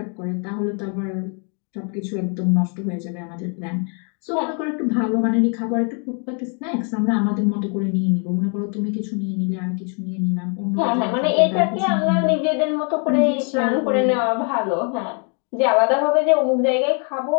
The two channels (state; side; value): quieter; right; 39.6 dB